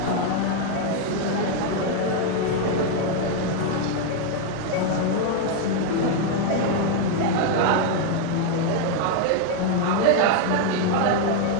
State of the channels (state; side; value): different; both; correlation 0.01